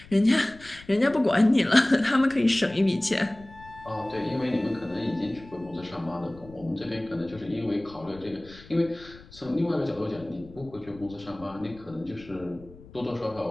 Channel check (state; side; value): noise; left; rumble, 21 dB below the sound